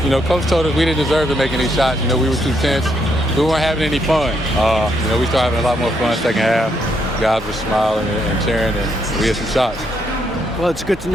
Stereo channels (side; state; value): both; normal; correlation 0.76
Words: You know, Coach told us we didn't deserve to make any shots. You know, we were too tense. We weren't having any fun. You know, we started having a lot more fun second half. Guys were smiling and cheering, and we had some shots. Well, it's good to